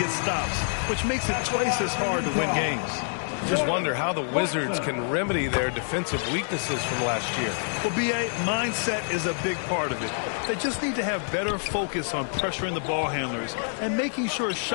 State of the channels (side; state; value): right; silent; 60 dB below the other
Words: stops, which makes it twice as hard to win games. Just wonder how the Wizards can remedy their defensive weaknesses from last year. Well, B.A., mindset is a big part of it. They just need to have better focus on pressuring the ball handlers and making sure